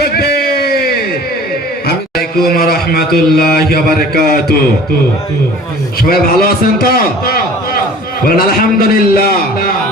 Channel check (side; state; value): both; normal; correlation 0.45